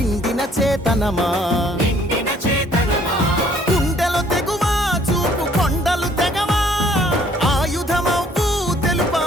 చేతనమా, గుండెలు తెగువా చూపు కొండలు తెగవా. ఆయుధమవు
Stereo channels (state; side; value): normal; both; correlation 0.60